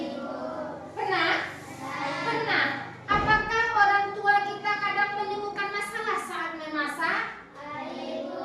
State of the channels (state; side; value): identical; both; correlation 1.00